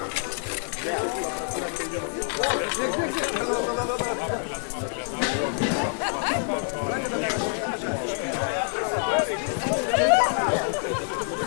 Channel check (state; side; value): silent; right; 61 dB below the other